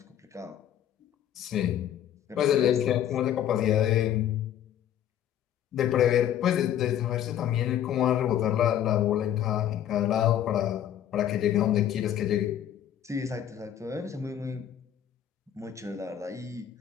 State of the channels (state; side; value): quieter; right; 10.5 dB